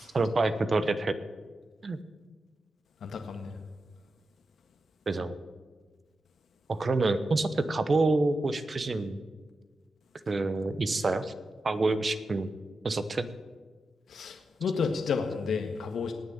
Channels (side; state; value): both; normal; correlation 0.89